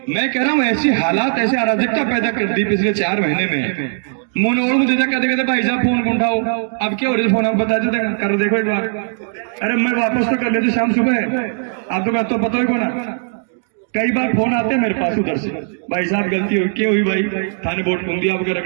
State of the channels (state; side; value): silent; left; digital silence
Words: मैं कह रहा हूँ ऐसी हालात, ऐसे अराजकता पैदा कर दी पिछले 4 महीने में। मोनोड़ मुझे कहते भाई साहब फोन कौन उठाओ, अब क्या हो रहा है फोन आप बता देते कर देखो एक बार। अरे मैं वापस तो कर लेते शाम सुबह, आप तो पता ही को ना। कई बार फोन आते हैं मेरे पास उधर से, भाई साहब गलती हुई, क्या हुई भाई? थाने वोट घूम दिया आपके